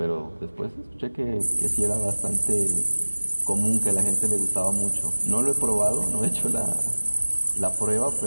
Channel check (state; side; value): inverted; both; correlation -1.00